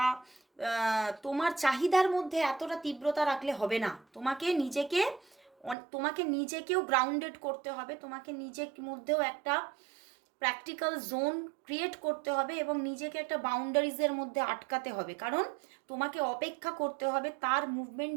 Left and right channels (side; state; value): left; drops out; at 5.8 s